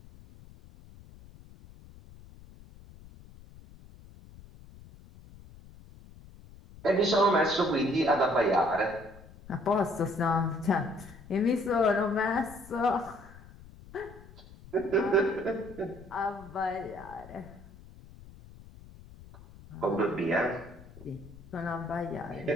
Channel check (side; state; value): left; noise; rumble, 20 dB below the sound